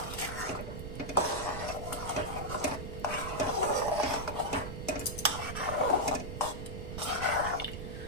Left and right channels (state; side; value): noise; right; rumble, 7 dB below the sound